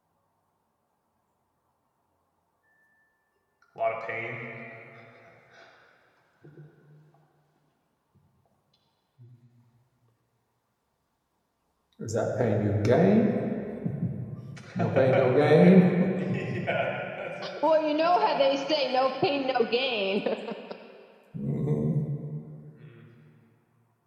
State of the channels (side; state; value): both; identical; correlation 1.00